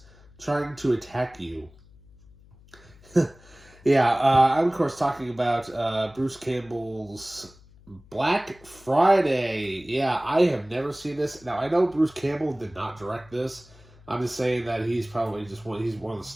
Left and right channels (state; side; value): noise; left; hum, 25 dB below the sound